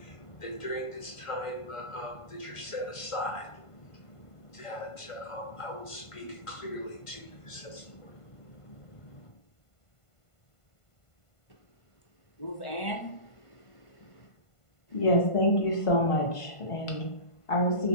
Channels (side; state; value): right; late; 1.5 ms